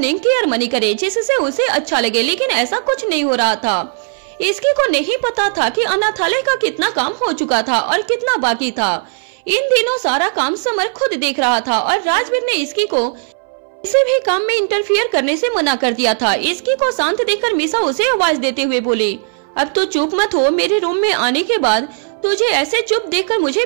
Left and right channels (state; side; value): silent; left; 65 dB below the other